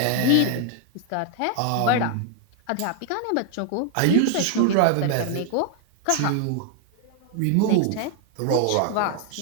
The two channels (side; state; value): both; different; correlation 0.00